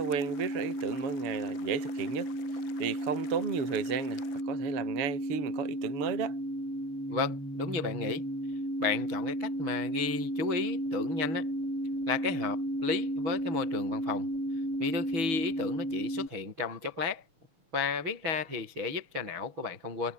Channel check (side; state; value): left; late; 6.2 ms